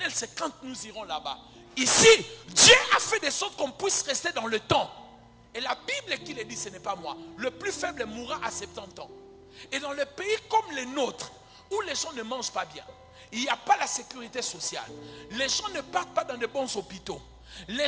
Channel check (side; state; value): both; identical; correlation 1.00